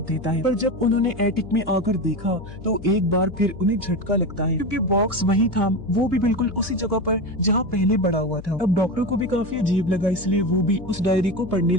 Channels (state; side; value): noise; left; hum, 15 dB below the sound